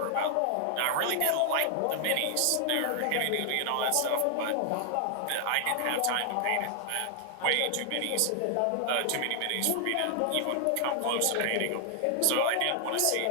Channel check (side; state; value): both; different; correlation 0.00